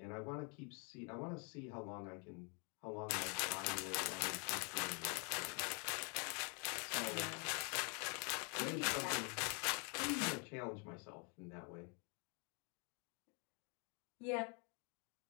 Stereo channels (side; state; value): right; quieter; 35.3 dB